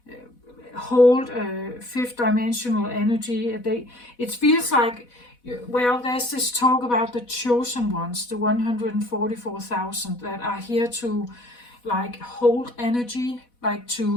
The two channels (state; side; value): late; right; 4.1 ms